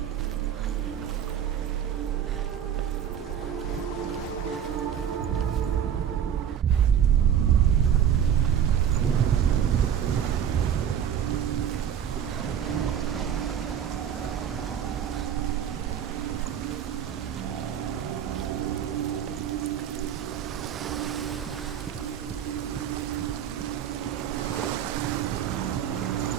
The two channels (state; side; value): quieter; left; 9.1 dB